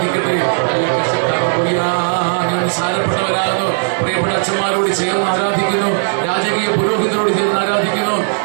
ഞാൻ സാരപ്പെട്ടവരാകുന്നു. പ്രിയപ്പെട്ട അച്ഛന്മാരോട് ചേർന്ന് ആരാധിക്കുന്നു. രാജകീയ പുരോഹിതരോട് ചേർന്ന് ആരാധിക്കുന്നു.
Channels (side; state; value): left; silent; digital silence